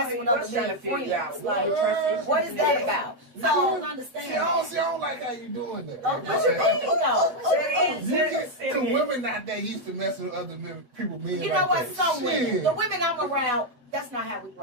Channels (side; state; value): left; late; 8.0 ms